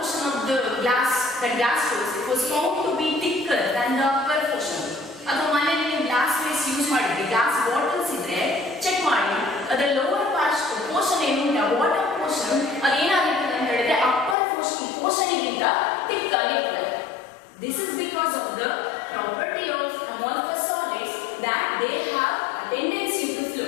of the glass doors was found to be thicker than the upper portion. ಅದು ಮನೆಯಲ್ಲಿ glass ways use ಮಾಡಿದ್ರೆ glass bottles ಇದ್ರೆ check ಮಾಡಿ ಅದರ lower portion ಏನು bottom portion ಅದೇನಾಗಿರ್ತದೆ ಅಂತ ಹೇಳಿದ್ರೆ upper portion ಗಿಂತ thick ಆಗಿರ್ತದೆ. This is because of the property of amorphous solids that they have a tendency to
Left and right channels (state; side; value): drops out; right; at 14.4 s